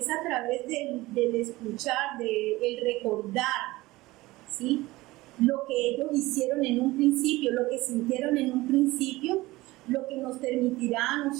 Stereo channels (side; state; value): left; quieter; 19.4 dB